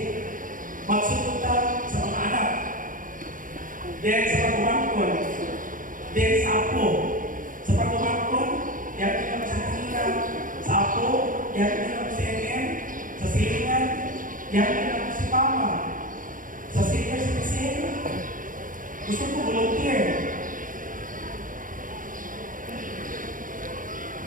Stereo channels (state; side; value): late; left; 0.39 ms